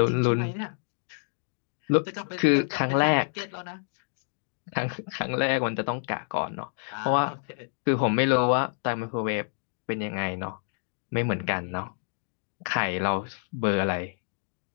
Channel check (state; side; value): silent; right; digital silence